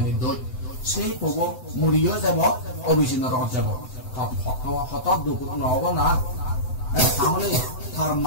দৈ সেই পব মুড়িও যাব অবিচ্ছিন্ন রহত যাব হত দুঃখ নহব না তাহলে তার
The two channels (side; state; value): right; late; 7.9 ms